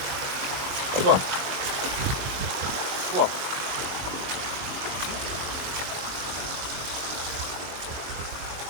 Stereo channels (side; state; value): left; late; 22 ms